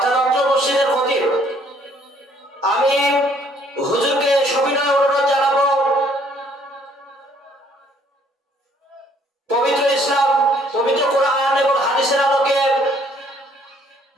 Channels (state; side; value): normal; both; correlation 0.63